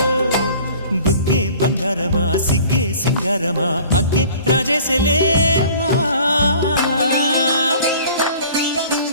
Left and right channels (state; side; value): inverted; both; correlation -0.48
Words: బుగ్గే బంగారమా సిగ్గే సింగారమా అగ్గే రాజేసలేమా